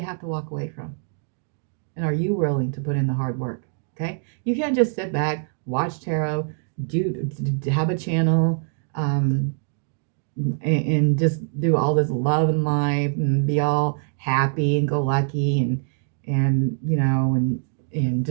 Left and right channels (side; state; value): left; silent; digital silence